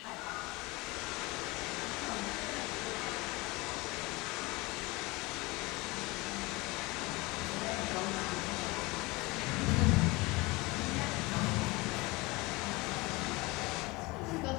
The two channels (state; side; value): quieter; right; 23.7 dB